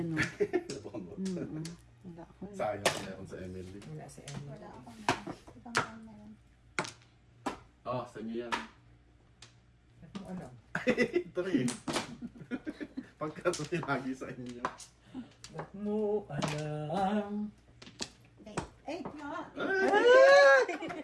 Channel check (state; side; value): identical; both; correlation 1.00